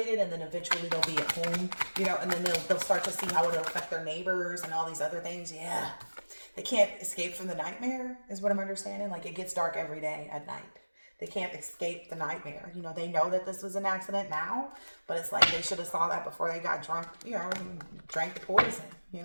and then eventually they'll be at home, you know, and then they'll start to see how it'll affect their neighbors and all these other things. Yeah. They can't escape from the nightmare is what I'm understanding. Like it gets dark every day at night. They can't escape the nightmare. You know, they know that this was an accident now, but it's like they should have saw that before they got drunk, you know, and drank the poison, you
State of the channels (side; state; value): both; inverted; correlation -1.00